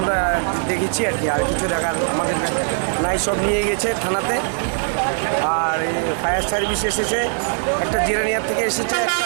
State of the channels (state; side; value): silent; left; 59 dB below the other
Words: আমরা দেখেছি আর কি, আর কিছু দেখার আমাদের নাই। সব নিয়ে গেছে থানাতে, আর ফায়ার সার্ভিস এসেছে, একটা জিরানিয়া থেকে এসেছে, একটা